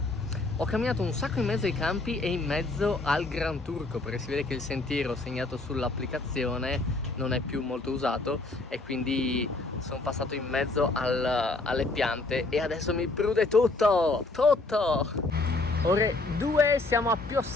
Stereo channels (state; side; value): quieter; right; 3.2 dB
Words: Ho camminato un sacco in mezzo ai campi e in mezzo al Gran Turco, perché si vede che il sentiero segnato sull'applicazione non è più molto usato e quindi sono passato in mezzo alle piante e adesso mi prude tutto! Ore 2, siamo a